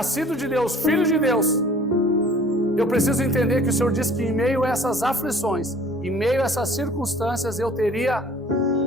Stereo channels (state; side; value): normal; both; correlation 0.51